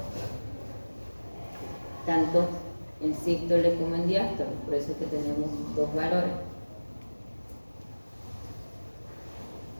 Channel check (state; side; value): inverted; both; correlation -1.00